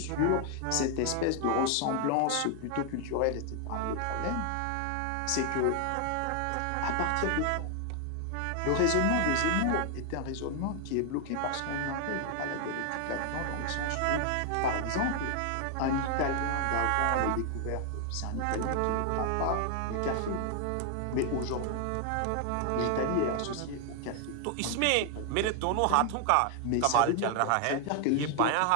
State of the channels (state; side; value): different; both; correlation 0.00